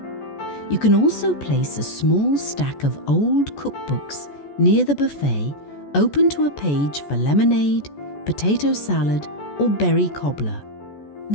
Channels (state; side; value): late; right; 14 ms